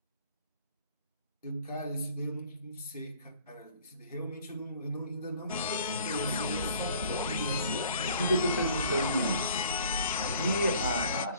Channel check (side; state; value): both; inverted; correlation -0.53